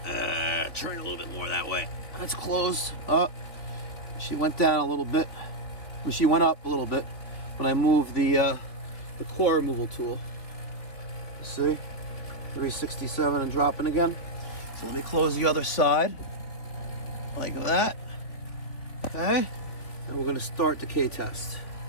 Turn a little bit more that way. That's closed. Up. She went down a little bit. Well, she went up a little bit when I moved the core removal tool. See? 367 and dropping again. So let me close the other side. Like that. Okay. And we're going to start the decay test.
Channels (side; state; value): right; late; 3.3 ms